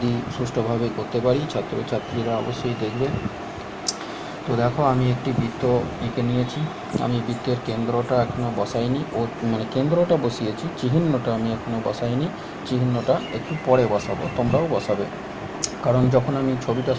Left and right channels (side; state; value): both; identical; correlation 1.00